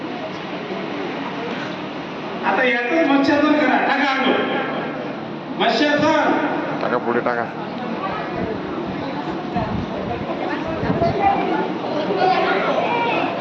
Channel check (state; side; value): identical; both; correlation 1.00